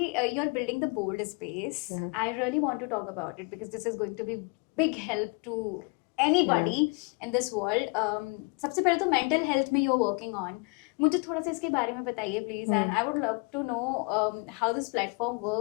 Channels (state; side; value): quieter; right; 33.2 dB